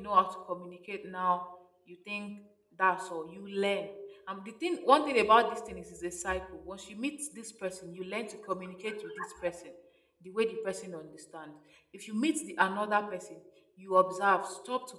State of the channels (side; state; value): both; identical; correlation 1.00